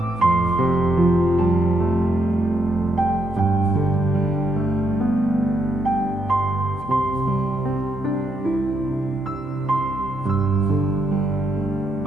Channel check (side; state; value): both; normal; correlation 0.78